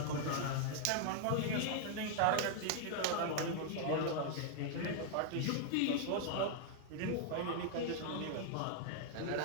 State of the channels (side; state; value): both; different; correlation 0.00